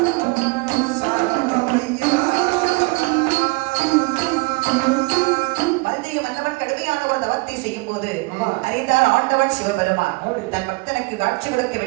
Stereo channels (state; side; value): quieter; left; 27.1 dB